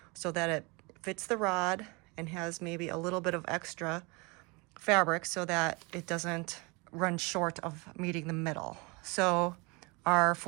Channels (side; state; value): left; quieter; 28.2 dB